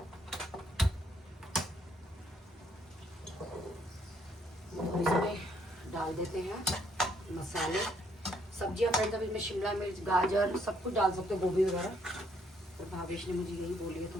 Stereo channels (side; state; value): both; normal; correlation 0.69